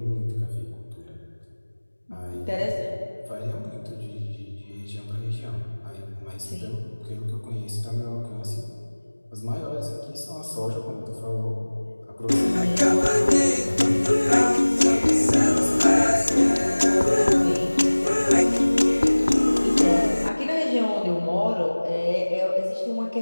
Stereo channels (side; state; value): both; inverted; correlation -1.00